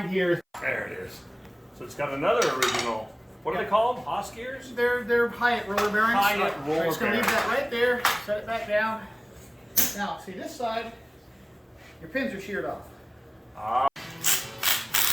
here, There it is. So it's got another original. What are they called? Haas gears? they're Hyatt roller bearings. Hyatt roller I'm just gonna leave bearings. that right there. Set it back down. Now, see this side, your pins are sheared off.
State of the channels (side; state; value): both; identical; correlation 1.00